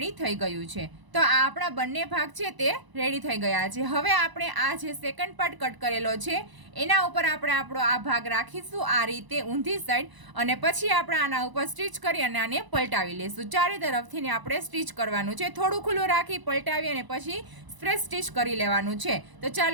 થઈ ગયું છે. તો આ આપણા બંને ભાગ છે તે રેડી થઈ ગયા છે. હવે આપણે આ જે સેકન્ડ પાર્ટ કટ કરેલો છે એના ઉપર આપણે આપણો આ ભાગ રાખીશું આ રીતે ઊંધી સાઈડ, અને પછી આપણે આના ઉપર સ્ટીચ કરી અને આને પલટાવી લઈશું. ચારે તરફથી ને આપણે સ્ટીચ કરવાનું છે. થોડું ખુલ્લું રાખી પલટાવી અને પછી સ્પ્રેસ સ્ટીચ કરી લેવાનું છે. તો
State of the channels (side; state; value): left; late; 1.0 ms